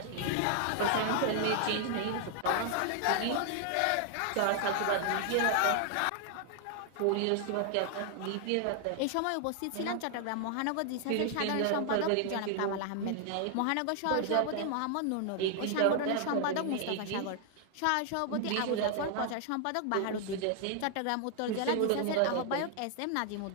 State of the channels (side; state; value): both; different; correlation 0.00